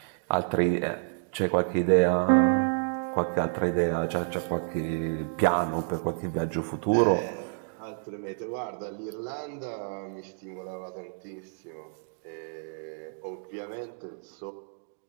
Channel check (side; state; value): left; silent; digital silence